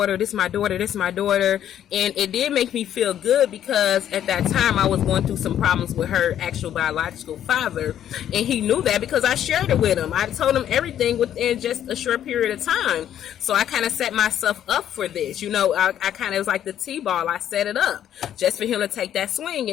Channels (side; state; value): right; quieter; 10.6 dB